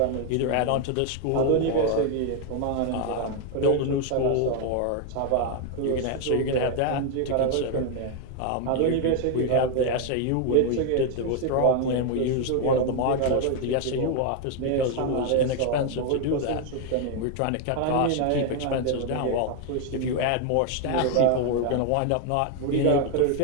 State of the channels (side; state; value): both; different; correlation 0.01